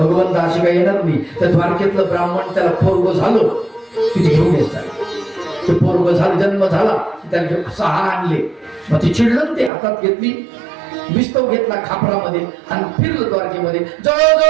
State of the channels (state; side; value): drops out; left; at 9.7 s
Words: अशी काही येणार नाही. त्या द्वारकेतलं ब्राह्मण त्याला पोरग झालं तिथे घेऊन येतात. ते पोरग झालं जन्म झाला त्याला घेऊन 6 आणले. मग ती चिडलं ते हातात घेतली विस्तव घेतला खापरामध्ये आणि फिरलं द्वारकेमध्ये.